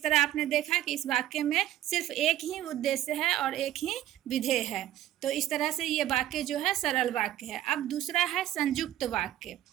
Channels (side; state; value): left; quieter; 13.1 dB